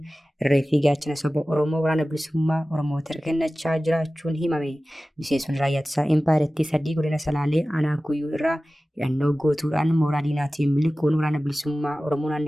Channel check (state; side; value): normal; both; correlation 0.96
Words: irree fi gaachana saba Oromoo waraana bilisummaa Oromoo harka kennachaa jiraachuun himame. Miseensonni raayyaa ittisaa impaayirtii 3 godina Salaalee aanaa Kuyyuu irraa hidhannoo gootuudhaan mooraa diinaatiin miliquun waraana bilisummaa Oromoo